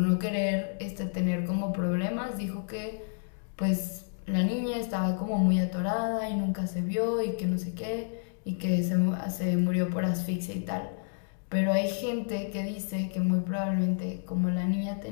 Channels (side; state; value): right; silent; digital silence